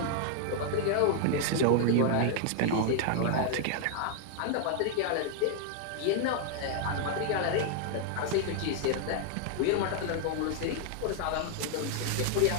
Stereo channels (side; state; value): both; different; correlation 0.00